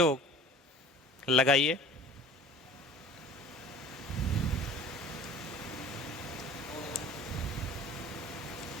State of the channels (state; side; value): normal; both; correlation 0.45